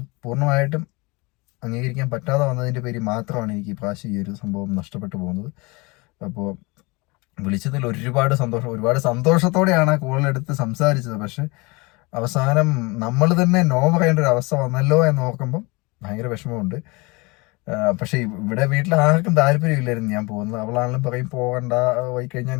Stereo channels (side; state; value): right; quieter; 26.2 dB